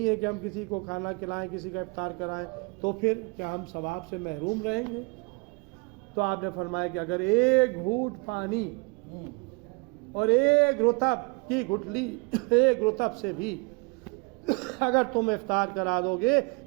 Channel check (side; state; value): left; quieter; 30.8 dB